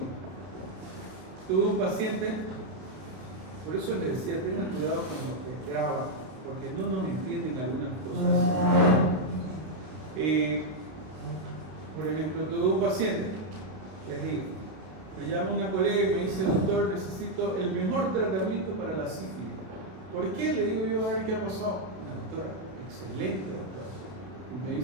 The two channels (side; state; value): left; late; 32 ms